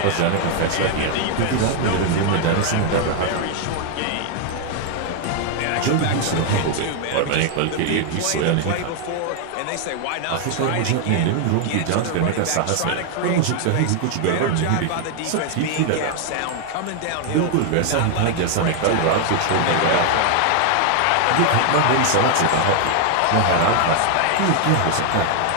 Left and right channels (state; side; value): different; both; correlation 0.00